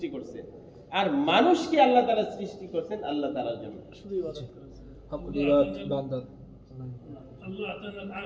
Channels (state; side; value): identical; both; correlation 1.00